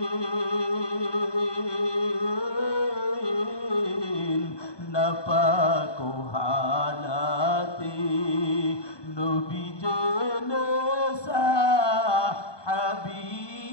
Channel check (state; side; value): late; right; 1.2 ms